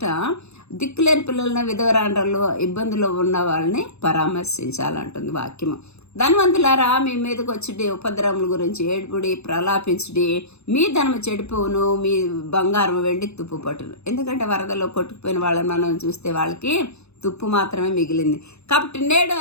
దిక్కులేని పిల్లలను, విధవరాండ్రలు, ఇబ్బందులు ఉన్న వాళ్ళని పరామర్శించాలంటుంది వాక్యము. ధనవంతులారా, మీ మీదకి వచ్చి ఉపద్రవముల గురించి ఏడుపుడి, ప్రలాపించుడి. మీ ధనము చెడిపోవును, మీ బంగారం వెండి తుప్పు పట్టును. ఎందుకంటే వరదలో కొట్టుకుపోయిన వాళ్ళని మనం చూస్తే వాళ్ళకి తుప్పు మాత్రమే మిగిలింది. కాబట్టి నేడు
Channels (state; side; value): late; right; 0.80 ms